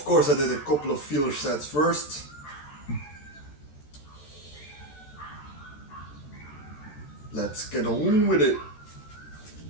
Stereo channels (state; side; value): late; right; 13 ms